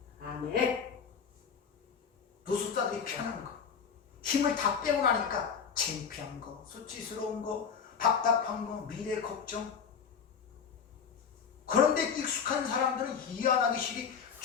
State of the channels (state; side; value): quieter; right; 6.7 dB